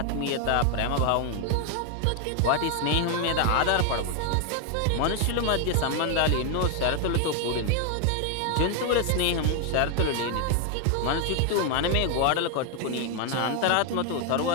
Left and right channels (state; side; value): different; both; correlation 0.01